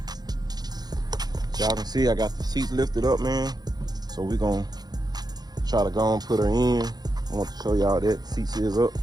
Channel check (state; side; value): late; left; 0.19 ms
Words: y'all can see I got the seats lifted up, man. So we're gonna try to go and put her in. I want to show y'all that the seats is up.